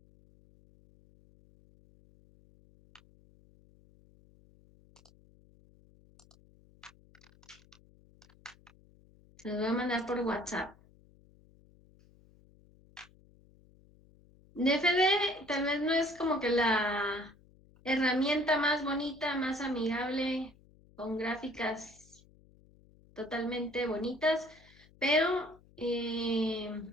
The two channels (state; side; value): noise; left; hum, 27 dB below the sound